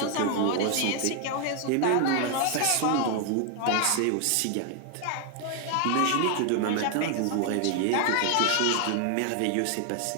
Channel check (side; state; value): both; different; correlation 0.01